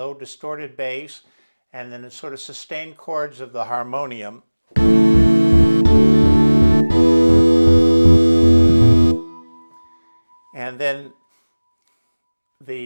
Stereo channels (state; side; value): inverted; both; correlation -1.00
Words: distorted bass, and then the sort of sustained chords of the harmonium. And then